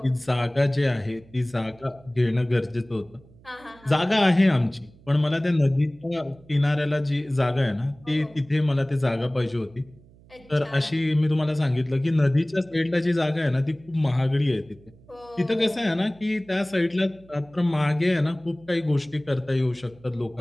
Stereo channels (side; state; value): right; noise; hum, 26 dB below the sound